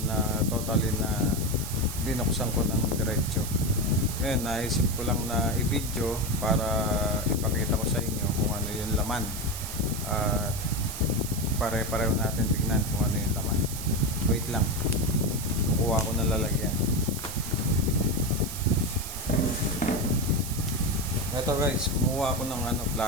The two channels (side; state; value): right; noise; hiss, 8 dB below the sound